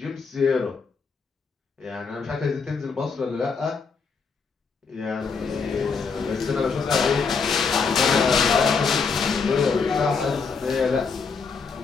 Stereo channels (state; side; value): quieter; right; 5.2 dB